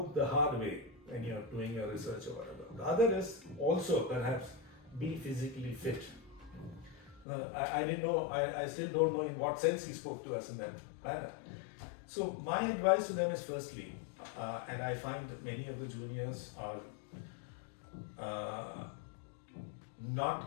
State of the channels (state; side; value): drops out; right; at 7.2 s